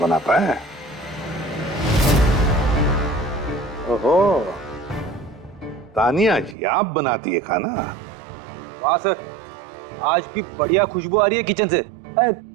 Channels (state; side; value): drops out; left; at 6.6 s